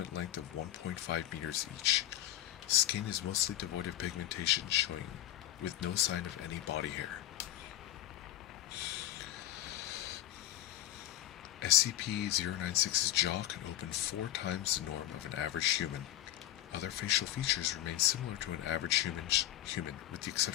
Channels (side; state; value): right; quieter; 14.0 dB